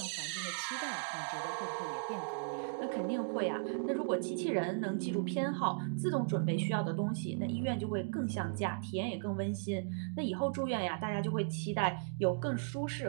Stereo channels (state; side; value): silent; left; digital silence